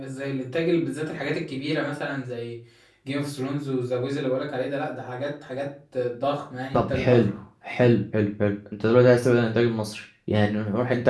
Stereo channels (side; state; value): both; identical; correlation 1.00